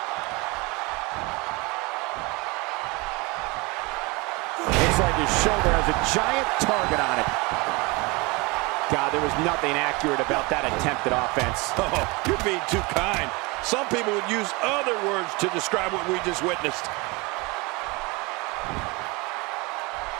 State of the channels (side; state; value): left; quieter; 26.0 dB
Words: Looks like his shoulder has a giant target on it. God, there was nothing accurate about that attempted offense. Oh, you're being too kind. Some people would use other words to describe what we just witnessed.